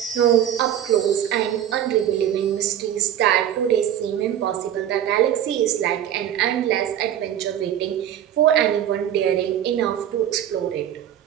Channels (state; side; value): quieter; left; 10.6 dB